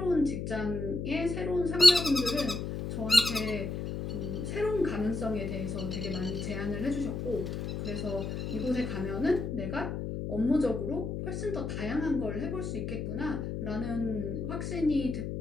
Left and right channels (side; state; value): left; noise; hum, 4 dB below the sound